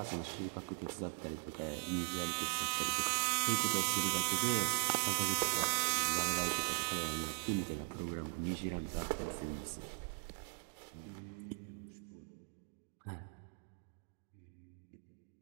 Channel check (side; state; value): left; silent; 51 dB below the other